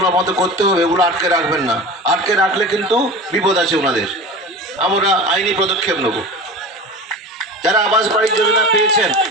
আমাদের করতে হবে, এগুলো আটকে রাখবেন না। আটকে রাখলে কিন্তু বিপদ আছে ওনাদের, আমরা আইনি পদক্ষেপ নেব। যারা আবাস বাড়ি যোজনা পেয়েছেন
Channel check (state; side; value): normal; both; correlation 0.33